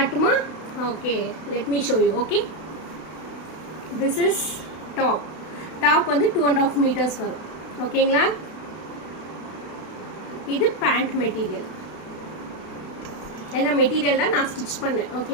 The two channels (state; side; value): late; right; 32 ms